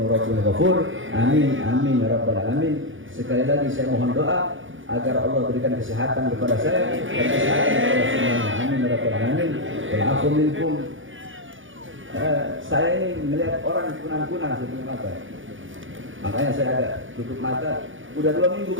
rabbun ghafur. Amin amin ya rabbal alamin. Sekali lagi saya mohon doa agar Allah berikan kesehatan kepada saya dan kesehatan kepada semuanya. Amin ya rabbal alamin. Wal afu minkum. Saya ini melihat orang kunang-kunang di mata. Makanya saya agak tutup mata. Udah 2 minggu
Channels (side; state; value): left; late; 0.57 ms